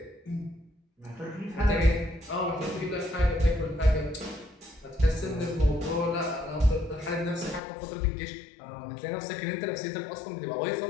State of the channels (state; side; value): drops out; right; at 7.6 s